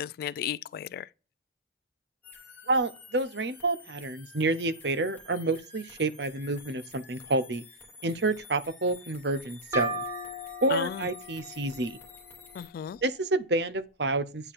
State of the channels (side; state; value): both; normal; correlation -0.09